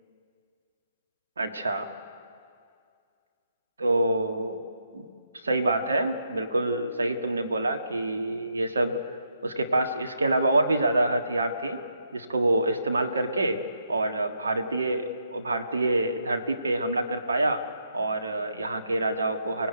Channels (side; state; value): both; inverted; correlation -0.79